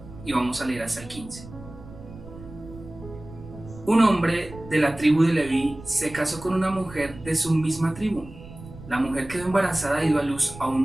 y vamos a leer hasta el 15. Un hombre de la tribu de Leví se casó con una mujer de su misma tribu. La mujer quedó embarazada y dio a luz a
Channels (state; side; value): noise; right; rumble, 16 dB below the sound